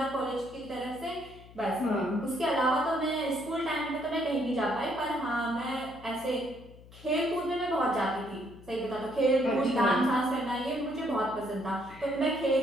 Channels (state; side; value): noise; left; hum, 20 dB below the sound